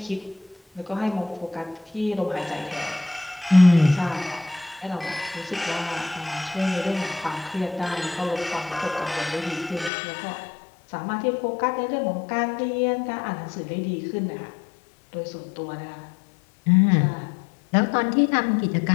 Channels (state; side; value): drops out; right; at 9.9 s